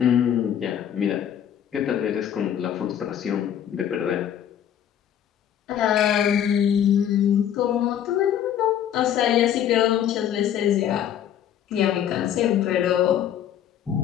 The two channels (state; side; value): quieter; right; 10.0 dB